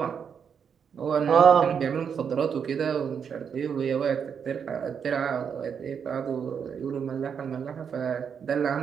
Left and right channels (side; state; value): left; quieter; 7.1 dB